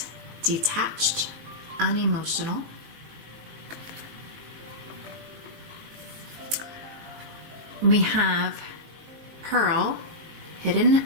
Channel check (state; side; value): late; left; 19 ms